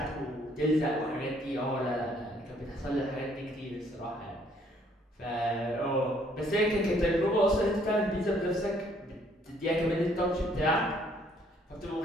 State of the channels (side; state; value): both; normal; correlation 0.64